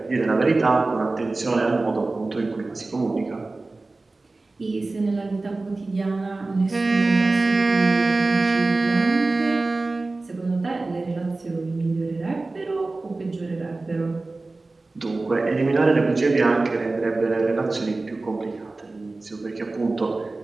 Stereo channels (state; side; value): quieter; left; 3.3 dB